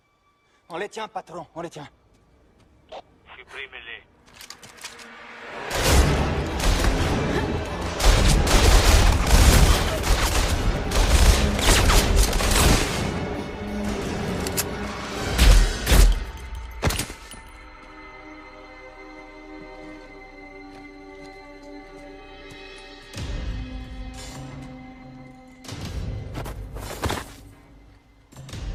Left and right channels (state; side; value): identical; both; correlation 1.00